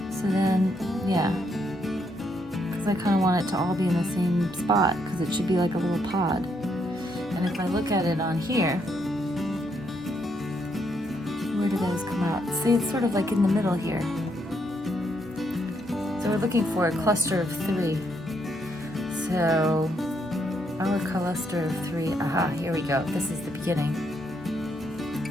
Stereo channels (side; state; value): both; normal; correlation 0.75